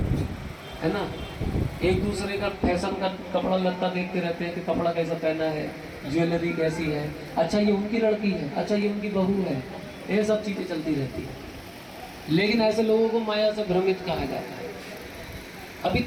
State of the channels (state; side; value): identical; both; correlation 1.00